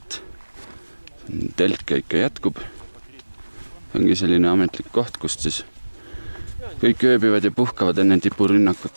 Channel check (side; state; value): both; inverted; correlation -1.00